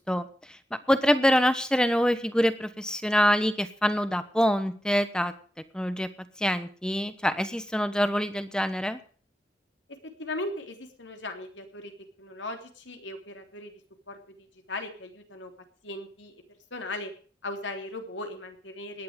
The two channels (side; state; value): both; normal; correlation 0.87